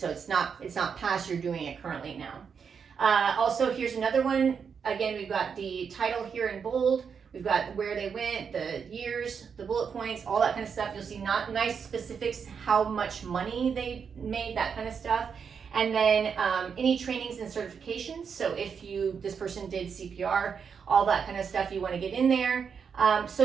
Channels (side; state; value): left; quieter; 6.5 dB